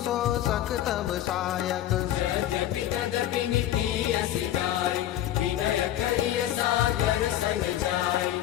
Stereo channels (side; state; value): right; quieter; 12.5 dB